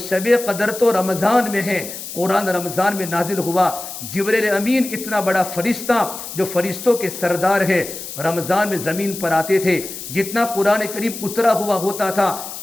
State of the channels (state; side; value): noise; left; hiss, 10 dB below the sound